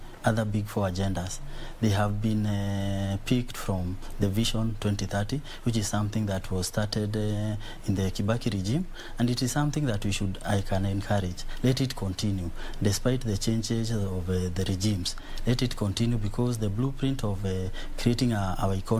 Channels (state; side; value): identical; both; correlation 1.00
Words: other Big Four agendas, they have been picked from the Vision 2030, which is something that was started in the Kibaki regime, and it is something that I can encourage. Let it continue, despite the changes of the regimes. Let it continue, because the blueprint of creating our